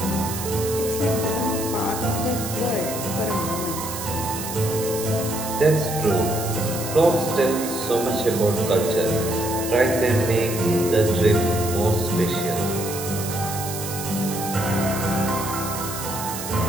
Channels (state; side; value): noise; right; hiss, 8 dB below the sound